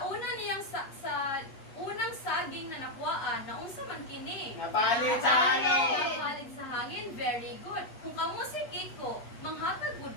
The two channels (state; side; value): late; right; 8.0 ms